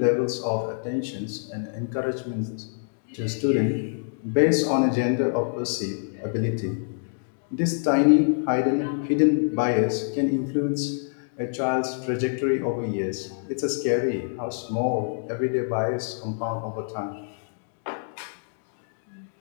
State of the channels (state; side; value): silent; right; digital silence